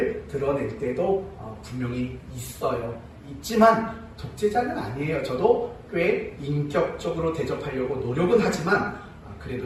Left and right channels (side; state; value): both; identical; correlation 1.00